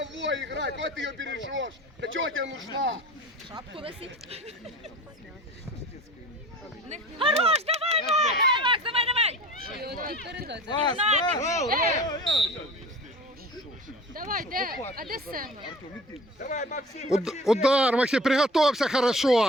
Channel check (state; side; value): normal; both; correlation 0.40